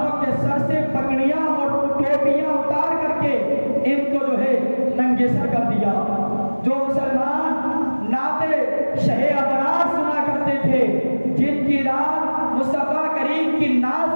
کے سر سے پگڑیاں اور ٹوپیاں اتار کر کے ان کو ننگے سر کر دیا۔ جو مسلمان نعتِ شہ ابرار سنا کرتے تھے، جن کی رات مصطفیٰ کریم کی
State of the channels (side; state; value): both; inverted; correlation -1.00